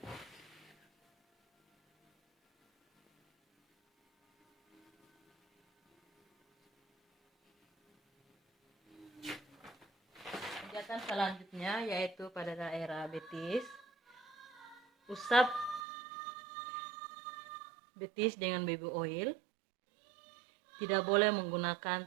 Pijatan selanjutnya yaitu pada daerah betis. Usap betis dengan baby oil. Tidak boleh menggunakan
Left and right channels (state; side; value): drops out; left; at 15.9 s